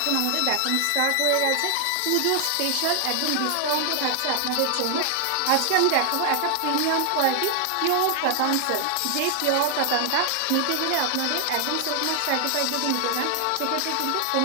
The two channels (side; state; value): both; different; correlation 0.00